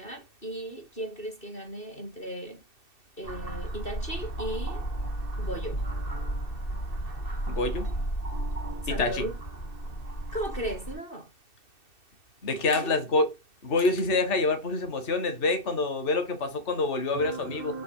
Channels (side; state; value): right; late; 2.6 ms